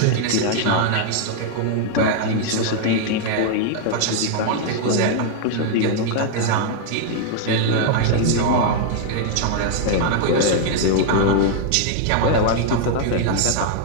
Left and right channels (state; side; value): different; both; correlation 0.00